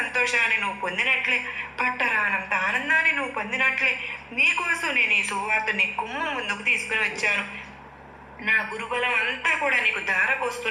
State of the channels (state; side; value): identical; both; correlation 1.00